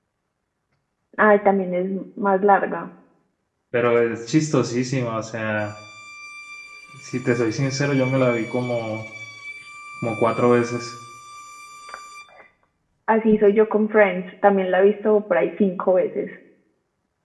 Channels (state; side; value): identical; both; correlation 1.00